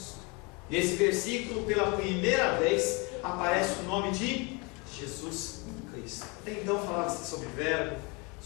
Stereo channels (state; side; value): quieter; right; 29.4 dB